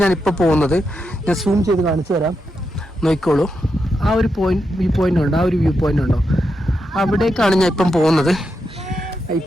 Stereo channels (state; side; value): normal; both; correlation 0.85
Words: ഞാനിപ്പോൾ പോകുന്നത്. ഞാൻ സൂം ചെയ്ത് കാണിച്ചു തരാം, നോക്കിക്കോളൂ. ആ ഒരു വ്യൂ പോയിന്റ് ഉണ്ടോ, ആ ഒരു വ്യൂ പോയിന്റ് ഉണ്ടോ, അവിടേക്കാണ് ഞാൻ ഇപ്പം പോകുന്നത്.